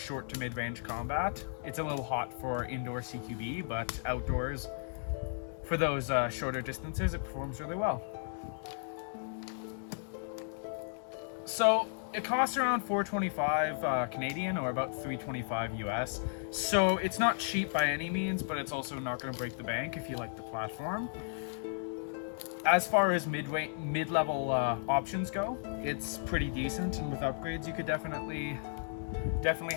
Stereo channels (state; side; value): silent; right; digital silence